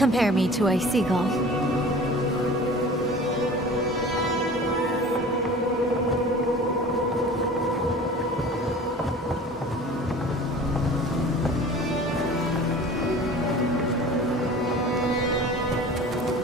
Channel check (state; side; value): normal; both; correlation 0.42